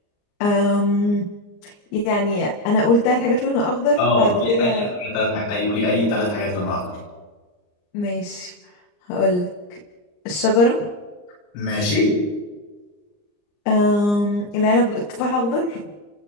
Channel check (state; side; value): late; right; 39 ms